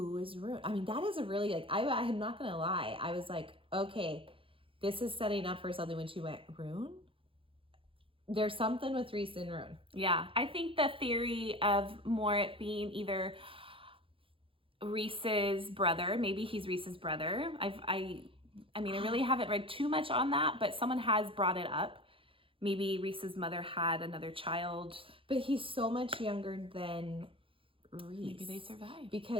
is Ruhn? I mean, that is a really, like, I'm not going to lie. I was like, okay, this is setting up for something when she went, Ruhn? There's something with Rhys and Ruhn. Yeah, I think the theory of more it being either Rhys's brother, maybe he's Rhys's brother. I mean, I really haven't read too much on that, but someone has brought it up. Maybe Rhys's mother had another child. But he's so much younger than... Rhys. Maybe they survived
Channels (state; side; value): late; left; 0.26 ms